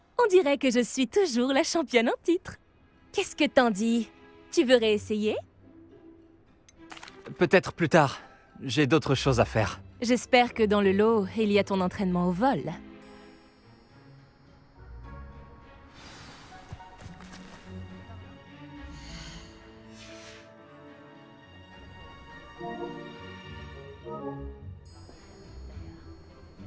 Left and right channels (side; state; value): both; identical; correlation 1.00